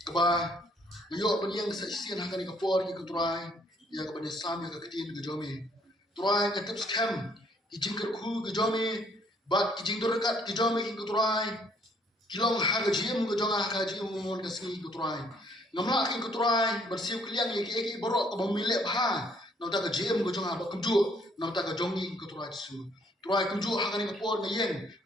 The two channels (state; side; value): normal; both; correlation 0.64